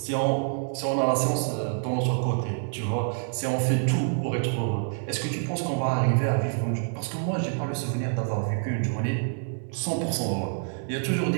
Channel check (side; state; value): left; silent; digital silence